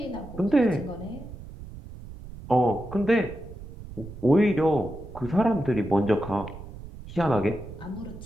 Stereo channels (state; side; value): noise; right; rumble, 14 dB below the sound